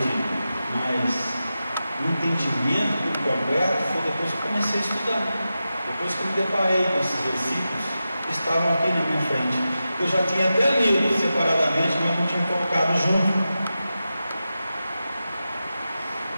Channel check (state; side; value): inverted; both; correlation -0.92